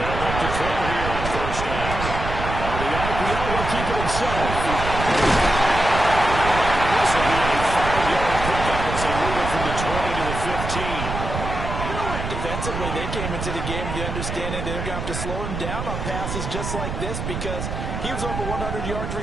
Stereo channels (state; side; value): noise; right; rumble, 5 dB below the sound